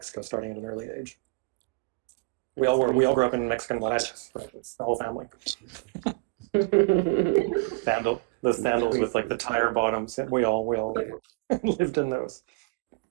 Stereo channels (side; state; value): left; quieter; 28.7 dB